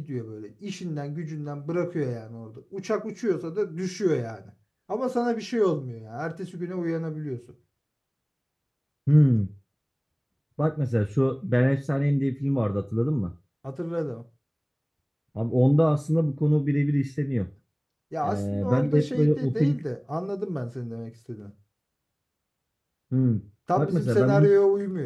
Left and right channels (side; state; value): both; identical; correlation 1.00